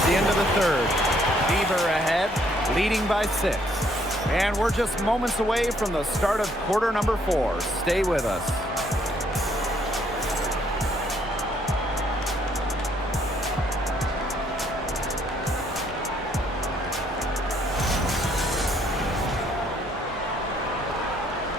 the end of the third. Beaver ahead, leading by 6. And we're just moments away from the start of quarter number 4. Stay with us.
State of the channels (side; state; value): both; normal; correlation 0.68